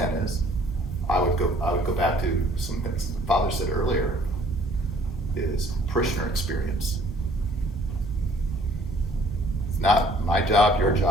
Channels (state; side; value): normal; both; correlation 0.58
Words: is. I would go back to some things the Father said earlier, is parishioner experience. It's not my job, your